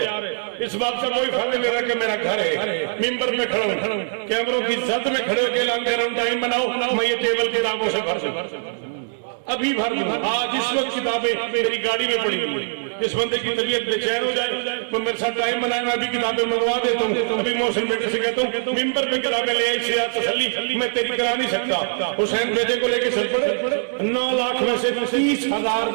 इस बात का कोई फर्क नहीं ले रहा कि मेरा घर है। मिंबर में खड़ा हूँ कैमरों की जद में खड़े होकर कह रहा हूँ टाइम बनाओ। मैं ये टेबल किताबों से भर दूं अभी भर दूं। आज इस वक्त किताबें मेरी गाड़ी में पड़ी हुई। जिस बंदे की तबीयत बेचैन हो जाए तो मेरे साथ टाइम बनाए मैं भी किताबें मंगवा देता हूँ। अभी मोहसिन बेटे से कहता हूँ मिंबर पे किताबें ले आई से तसल्ली मैं तेरी करा नहीं सकता। हुसैन बेटे को लेके चल पड़े 9 लाख में से 30,000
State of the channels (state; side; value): silent; left; digital silence